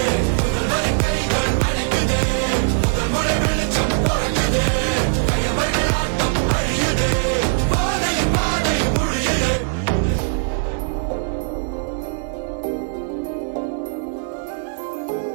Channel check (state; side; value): silent; left; digital silence